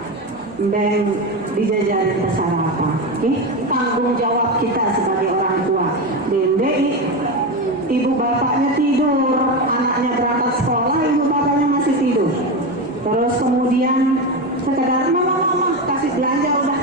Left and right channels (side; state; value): both; normal; correlation 0.17